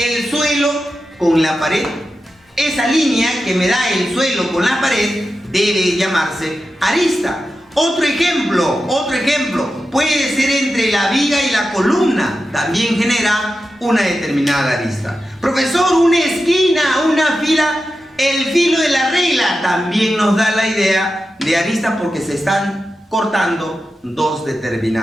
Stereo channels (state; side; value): normal; both; correlation 0.91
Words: suelo con la pared. Esa línea que me da el suelo con la pared debe llamarse arista. Otro ejemplo puede ser entre la viga y la columna, también genera una determinada arista. Profesor, una esquina, una fila, el filo de la regla también nos da la idea de arista, porque se están cortando dos